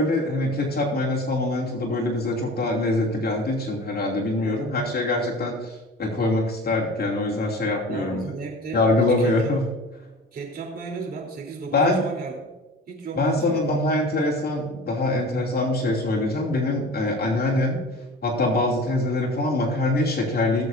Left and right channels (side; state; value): both; normal; correlation 0.39